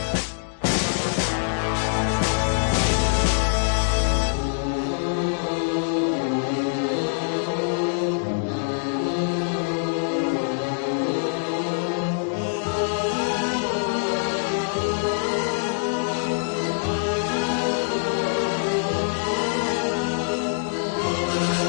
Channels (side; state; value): right; silent; digital silence